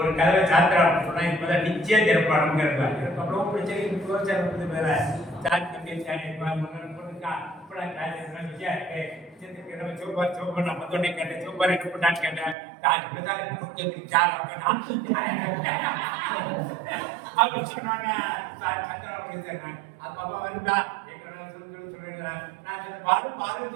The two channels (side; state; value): left; drops out; at 12.6 s